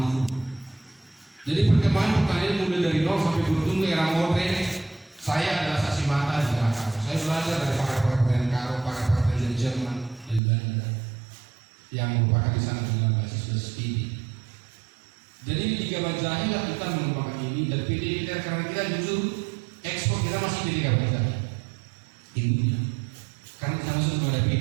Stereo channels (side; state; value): left; drops out; at 10.4 s